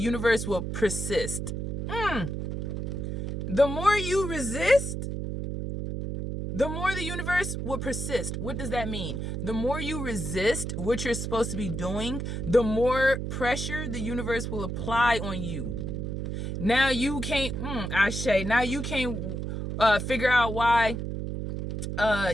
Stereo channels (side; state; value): right; noise; hum, 4 dB below the sound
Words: will persist. The more you resist, the more the universe will persist. What does that mean? The more you resist what you're supposed to be doing, the more pressure the universe will apply on you. Now you can't, Ashe, now you can't figure out why